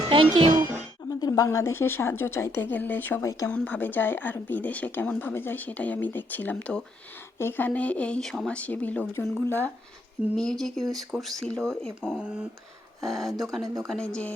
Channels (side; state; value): both; normal; correlation 0.72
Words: Thank you. আমাদের বাংলাদেশে সাহায্য চাইতে গেলে সবাই কেমনভাবে যায় আর বিদেশে কেমনভাবে যায় সেটাই আমি দেখছিলাম। তো এখানে এই সমাজসেবী লোকজনগুলা মিউজিক ইউজ করছিল এবং দোকানে দোকানে যে